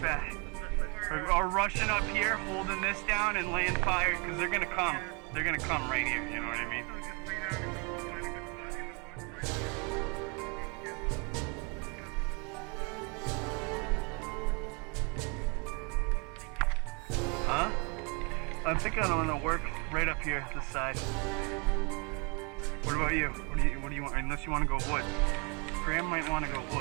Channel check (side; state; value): left; quieter; 32.5 dB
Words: bet. We're rushing up here, holding this down and laying fire because they're gonna come. They're gonna come right here. You know what I mean? Huh? I think I'm gonna work right up here, this side. What about you? What do you want? Unless you want to go woods. Graham might want to go